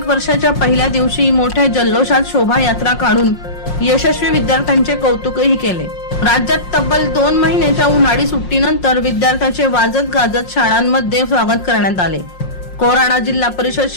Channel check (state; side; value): late; right; 5.5 ms